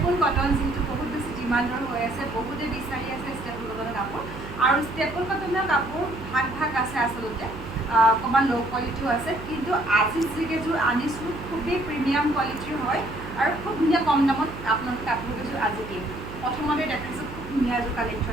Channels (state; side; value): noise; right; hum, 12 dB below the sound